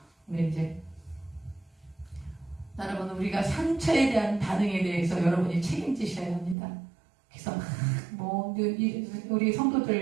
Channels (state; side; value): drops out; left; at 6.6 s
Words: 근데 이제 여러분, 우리가 상처에 대한 반응에 대해서 여러분이 책임지셔야 합니다. 그래서 우리 성도들